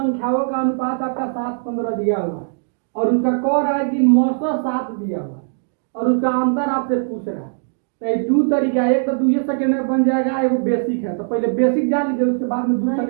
का अनुपात आपका 7:15 दिया हुआ है और उसका कह रहा है कि मौसा 7 दिया हुआ है और उसका अंतर आपसे पूछ रहा है। तो ये दो तरीका है, एक तो 2 सेकंड में बन जाएगा, एगो बेसिक है। तो पहले बेसिक जान लीजिए, उसके बाद में 2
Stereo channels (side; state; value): left; silent; digital silence